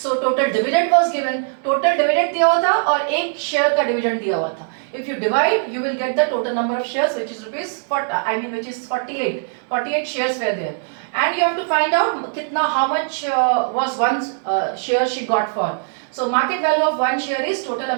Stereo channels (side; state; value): left; silent; digital silence